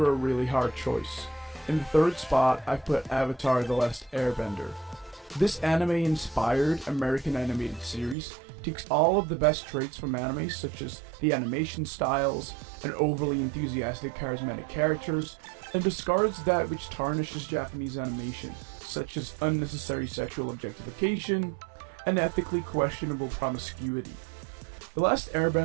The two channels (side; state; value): left; drops out; at 8.2 s